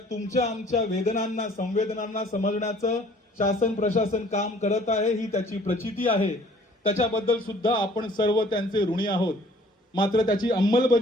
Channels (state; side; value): normal; both; correlation 0.55